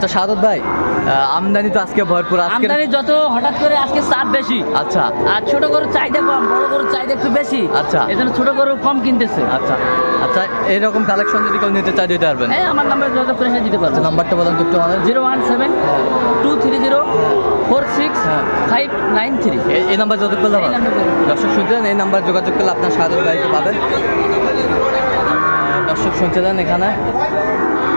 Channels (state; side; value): inverted; both; correlation -1.00